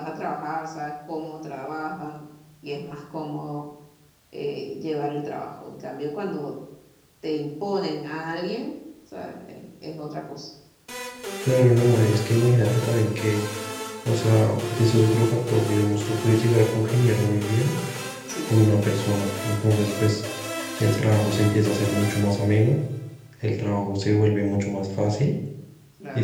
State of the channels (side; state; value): both; identical; correlation 1.00